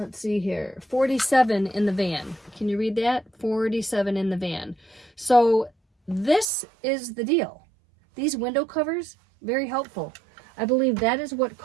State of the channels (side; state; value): left; drops out; at 6.5 s